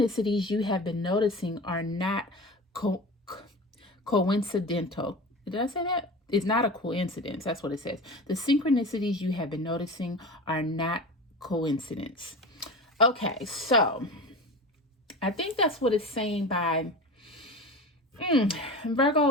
you have been noticing are not coincidental. Did I say that? It's not a coincidence. That's what it says. The synchronicities you have been noticing are not coincidence. Okay, so I think that's what it's saying by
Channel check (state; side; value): normal; both; correlation 0.32